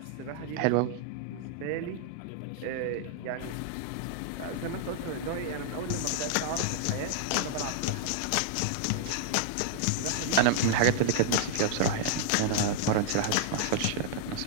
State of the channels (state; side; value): different; both; correlation -0.01